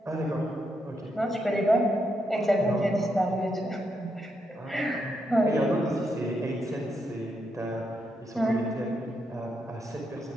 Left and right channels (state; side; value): normal; both; correlation 0.81